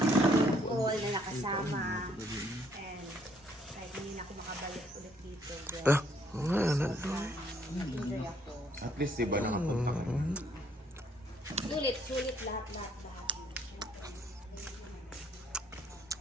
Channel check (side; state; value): both; normal; correlation 0.67